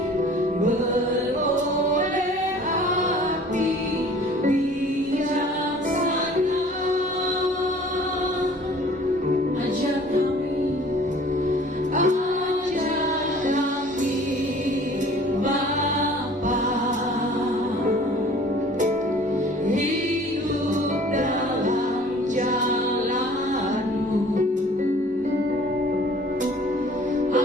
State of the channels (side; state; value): both; normal; correlation 0.50